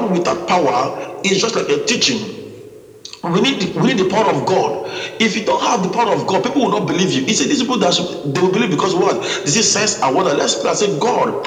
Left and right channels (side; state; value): both; identical; correlation 1.00